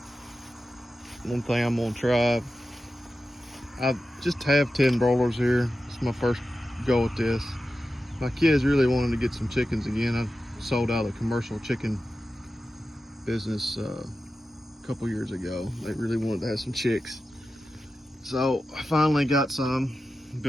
One thing I'm gonna try. I just have 10 broilers here. It's my first go at this. My kids really wanted to get some chickens again. I sold out a commercial chicken business a couple years ago. They really wanted to have some chicks. So I finally got some,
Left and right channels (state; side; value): normal; both; correlation 0.92